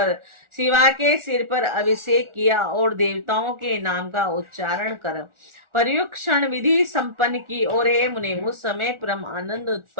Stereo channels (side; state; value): left; late; 1.4 ms